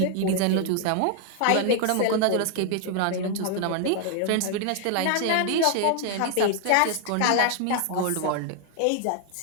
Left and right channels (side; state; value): both; different; correlation 0.00